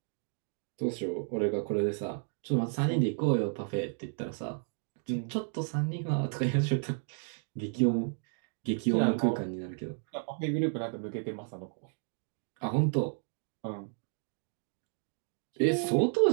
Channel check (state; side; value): silent; left; 56 dB below the other